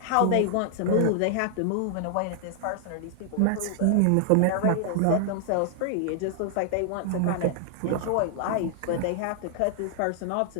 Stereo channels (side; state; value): both; different; correlation 0.00